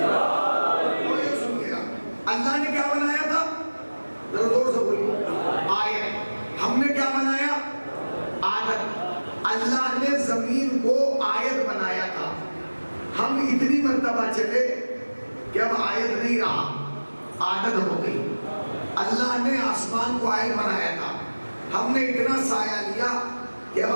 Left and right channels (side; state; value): both; inverted; correlation -1.00